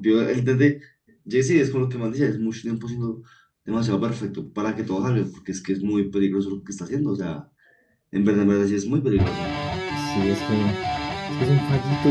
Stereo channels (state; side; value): identical; both; correlation 1.00